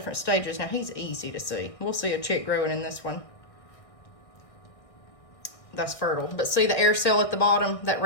stages. Now, he's easy to see. We'll see a chick growing in this one. That's fertile. But see the air cell at the bottom, that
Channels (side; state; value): right; late; 1.6 ms